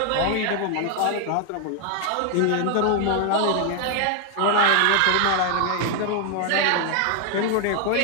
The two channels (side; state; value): both; different; correlation 0.00